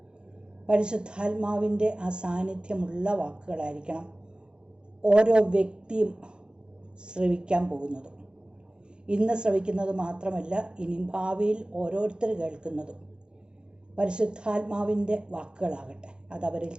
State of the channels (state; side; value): late; left; 0.049 ms